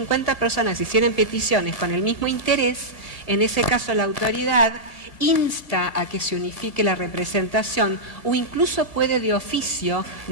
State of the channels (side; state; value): right; late; 1.8 ms